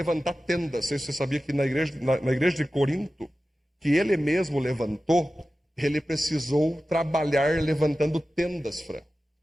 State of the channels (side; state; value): both; normal; correlation 0.95